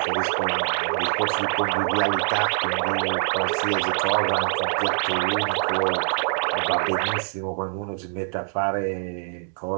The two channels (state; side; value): silent; left; digital silence